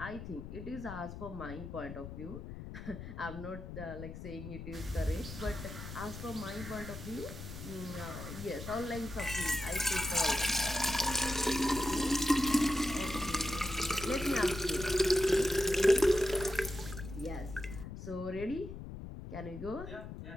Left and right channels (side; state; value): left; noise; rumble, 10 dB below the sound